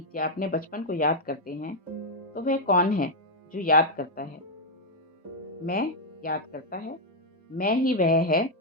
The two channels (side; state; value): both; normal; correlation -0.01